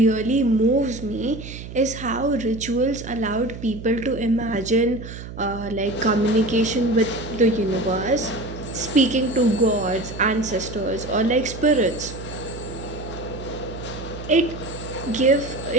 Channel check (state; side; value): noise; right; hum, 12 dB below the sound